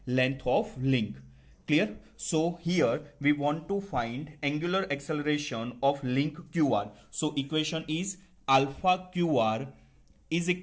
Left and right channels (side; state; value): both; identical; correlation 1.00